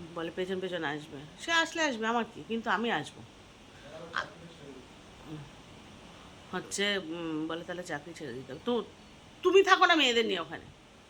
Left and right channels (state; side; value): identical; both; correlation 1.00